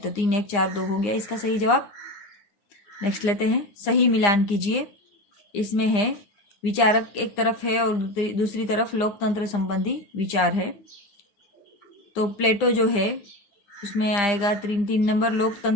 3, 1, 4, 2 हो गया इसका सही जवाब। नेक्स्ट लेते हैं, सही मिलान कीजिए। इसमें है विचारक एक तरफ है और दूसरी तरफ लोकतंत्र संबंधी विचार है। तो प्लेटो जो है उसमें आएगा 3 नंबर,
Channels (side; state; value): right; late; 9.8 ms